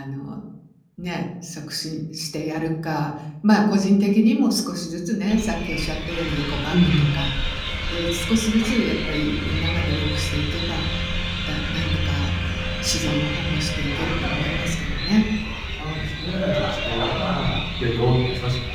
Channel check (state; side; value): identical; both; correlation 1.00